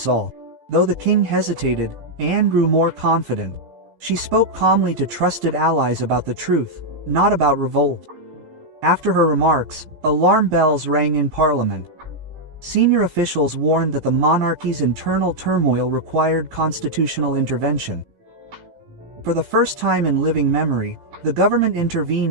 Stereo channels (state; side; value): late; left; 15 ms